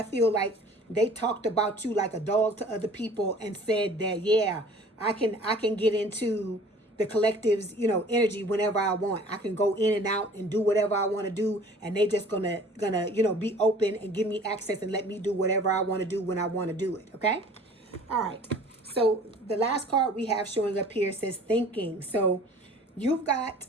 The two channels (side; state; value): both; normal; correlation 0.49